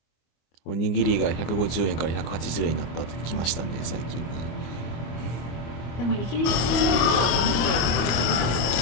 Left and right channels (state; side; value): late; right; 25 ms